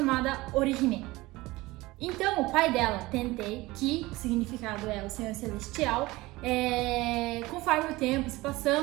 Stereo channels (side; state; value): left; quieter; 20.2 dB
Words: Orihime. Então, o pai dela, Tentei, que o significado é o Senhor Celestial, conforme o tempo se